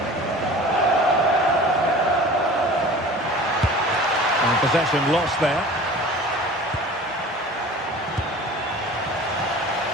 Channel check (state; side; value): normal; both; correlation 0.41